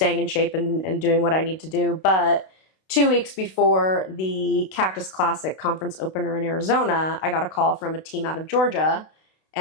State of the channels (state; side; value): late; right; 32 ms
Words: in shape and doing what I need to do. But 2 weeks before the Cactus Classic conference opener in Arizona, I got a call from a team out of Georgia.